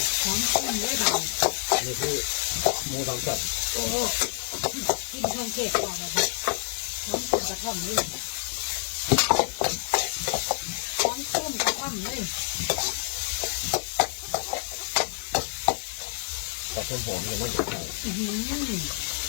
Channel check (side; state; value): right; silent; 60 dB below the other